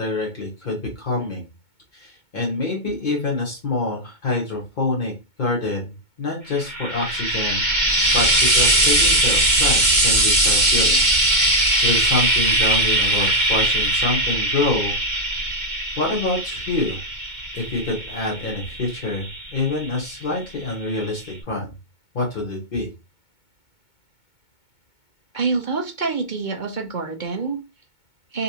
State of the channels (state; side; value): late; right; 2.2 ms